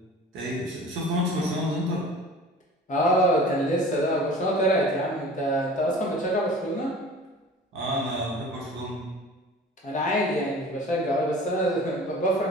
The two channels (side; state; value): both; normal; correlation 0.42